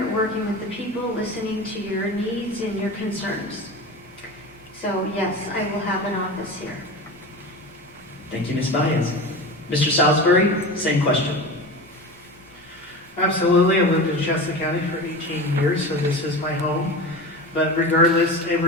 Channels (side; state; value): both; normal; correlation 0.29